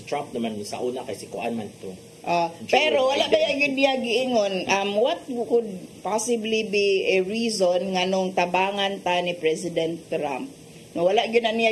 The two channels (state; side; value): identical; both; correlation 1.00